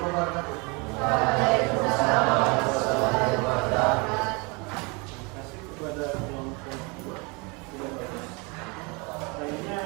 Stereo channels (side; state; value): left; quieter; 29.2 dB